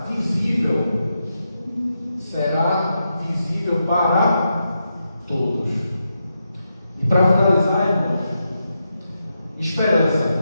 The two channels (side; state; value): both; inverted; correlation -0.85